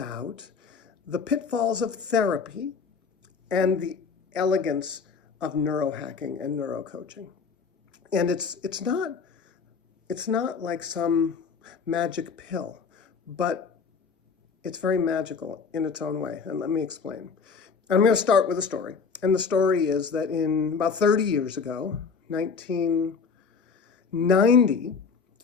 the pitfalls of therapy and the elegance of neurohacking and neuro coaching. And it's not like some magic pill, but it's very magical in its own way. And let me explain. I'm going to start with a story. And the story is that in about 30 years ago, 1990,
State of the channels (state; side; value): quieter; right; 5.5 dB